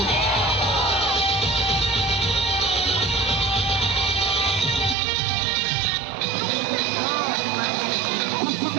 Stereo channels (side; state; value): left; drops out; at 5.0 s